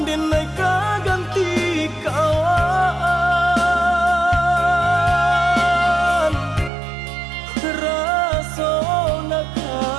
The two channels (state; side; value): drops out; left; at 6.7 s